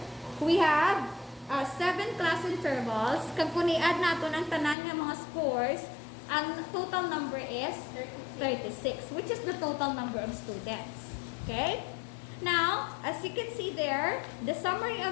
we have 7 class intervals. Kung kuni-add natin ang tanan ng mga scores Ang total number is 36, which is the total number of students. Okay? Now, as you can see there, the summary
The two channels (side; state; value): right; drops out; at 4.8 s